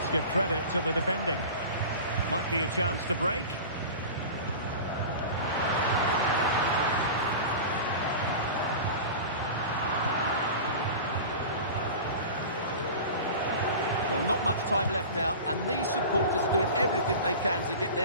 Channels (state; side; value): inverted; both; correlation -0.34